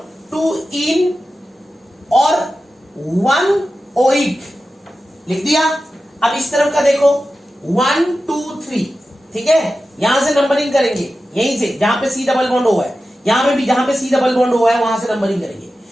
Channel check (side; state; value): both; normal; correlation 0.93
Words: 2 इन और 1 ओइक लिख दिया। अब इस तरफ का देखो 1 2 3, ठीक है। यहां से नंबरिंग करेंगे, यहीं से जहां पे C डबल बॉन्ड हुआ है, यहां पे भी जहां पे C डबल बॉन्ड हुआ है वहां से नंबरिंग करेंगे।